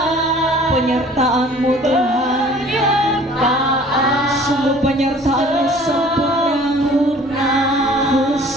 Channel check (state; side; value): normal; both; correlation 0.51